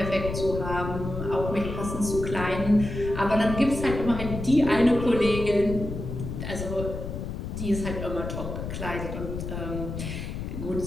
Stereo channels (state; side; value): noise; left; rumble, 6 dB below the sound